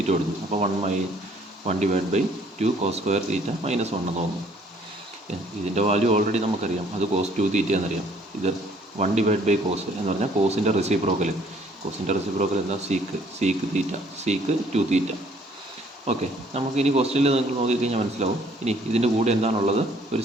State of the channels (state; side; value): normal; both; correlation 0.61